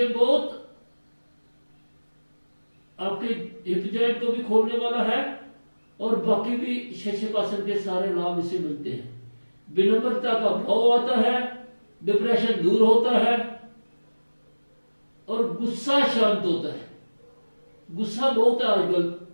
बहुत आपके हिप जॉइंट को भी खोलने वाला है और बाकी भी शशकासन के सारे लाभ इसे मिलते हैं। विनम्रता का भाव आता है, डिप्रेशन दूर होता है और गुस्सा शांत होता है। गुस्सा बहुत है आजकल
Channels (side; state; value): both; inverted; correlation -1.00